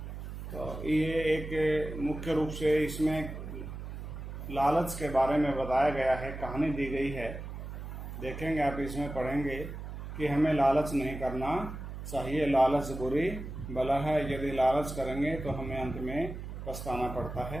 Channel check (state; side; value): noise; right; hum, 8 dB below the sound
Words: तो ये एक मुख्य रूप से इसमें लालच के बारे में बताया गया है, कहानी दी गई है। देखेंगे आप, इसमें पढ़ेंगे कि हमें लालच नहीं करना चाहिए। लालच बुरी बला है, यदि लालच करेंगे तो हमें अंत में पछताना पड़ता